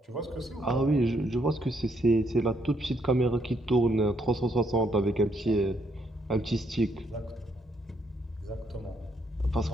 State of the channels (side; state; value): both; normal; correlation 0.74